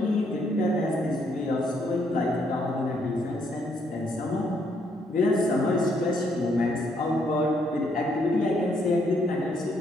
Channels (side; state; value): both; normal; correlation 0.72